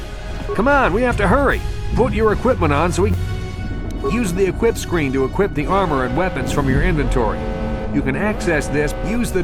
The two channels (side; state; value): both; identical; correlation 1.00